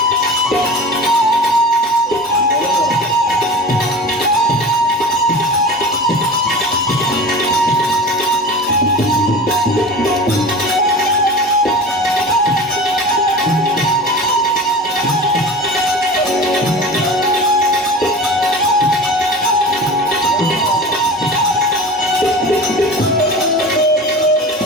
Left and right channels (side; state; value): both; normal; correlation 0.34